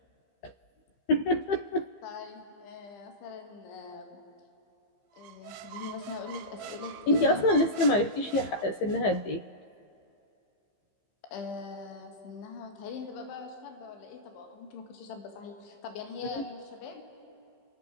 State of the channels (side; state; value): right; late; 15 ms